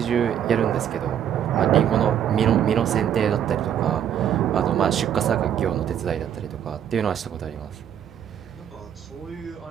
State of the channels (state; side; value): quieter; left; 9.5 dB